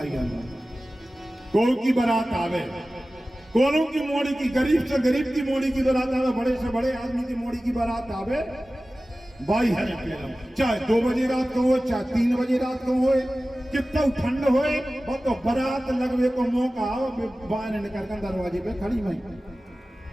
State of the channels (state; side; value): normal; both; correlation 0.96